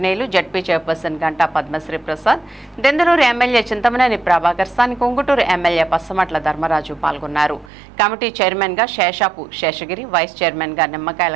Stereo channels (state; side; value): drops out; left; at 7.7 s